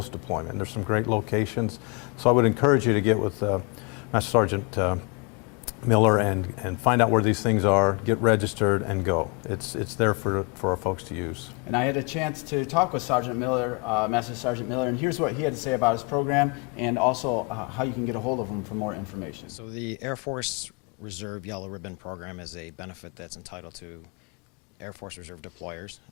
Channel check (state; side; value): quieter; right; 31.8 dB